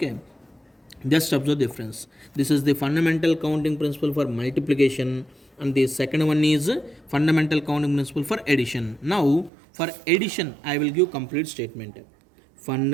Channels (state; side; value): drops out; left; at 9.5 s